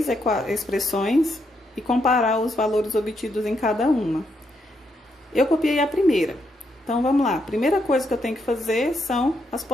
expressões e comparar os valores obtidos em cada uma. Eu copiei a primeira. Então, vamos lá. A primeira coisa que eu tenho que fazer são as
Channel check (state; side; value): normal; both; correlation 0.78